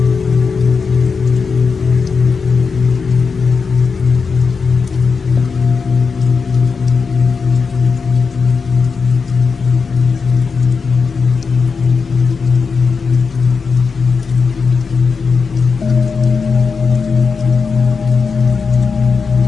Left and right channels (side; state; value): right; quieter; 5.1 dB